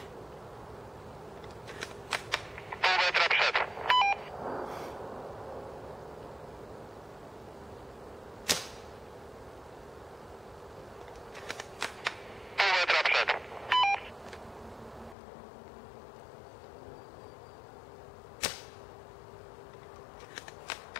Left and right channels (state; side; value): drops out; right; at 15.2 s